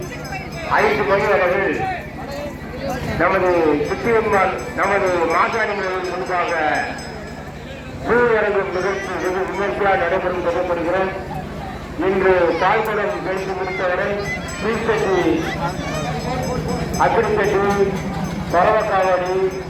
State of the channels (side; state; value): both; identical; correlation 1.00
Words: 5 மணி அளவில் நமது சுத்தியம்மாள் நமது மாசாணிகளின் முன்பாக பூவரங்கும் நிகழ்ச்சி வெகு விமர்சையாக நடைபெறும் சொல்லப்படுகிறோம். இன்று பால்குடம் கழித்து முடித்தவரை தீர்த்தட்டி, அக்கிரித்தட்டி, பரவக்காவடி,